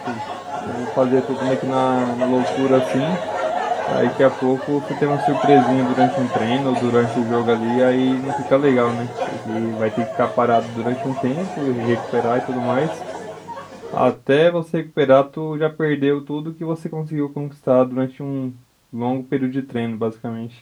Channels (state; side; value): identical; both; correlation 1.00